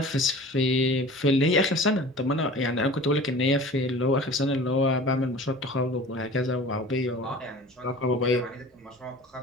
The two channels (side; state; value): both; normal; correlation 0.41